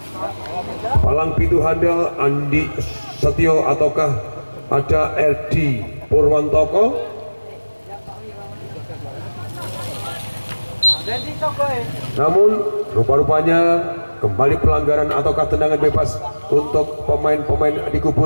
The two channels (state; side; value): inverted; both; correlation -1.00